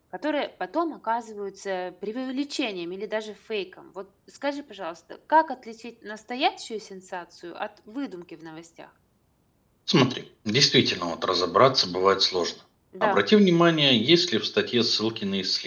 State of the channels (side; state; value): both; identical; correlation 1.00